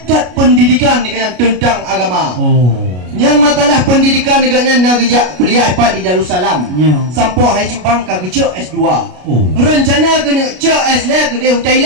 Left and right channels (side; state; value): left; late; 33 ms